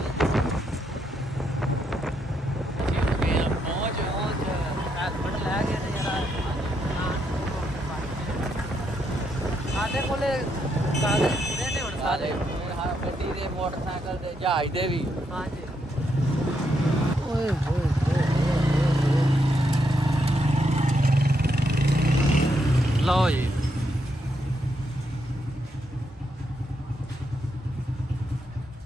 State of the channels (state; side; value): normal; both; correlation 0.79